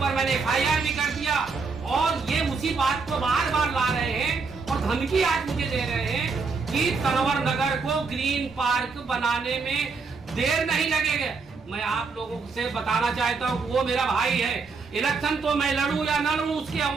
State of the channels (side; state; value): left; quieter; 4.6 dB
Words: मैंने FIR भी कर दिया, और ये उसी बात को बार बार ला रहे हैं और धमकी आज मुझे दे रहे हैं कि तनवर नगर को ग्रीन पार्क बनाने में देर नहीं लगेगा। मैं आप लोगों से बताना चाहता हूँ, वो मेरा भाई है, इलेक्शन तो मैं लड़ूं या न लड़ूं उसके